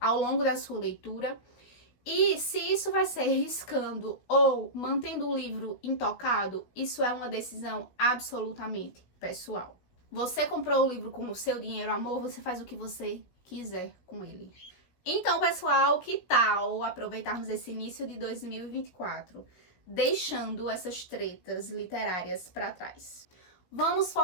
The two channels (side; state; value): right; late; 16 ms